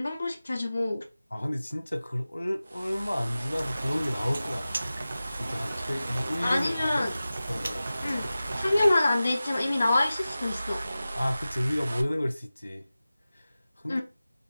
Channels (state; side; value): inverted; both; correlation -0.96